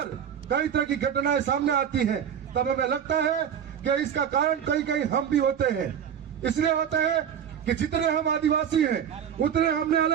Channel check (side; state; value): left; quieter; 8.6 dB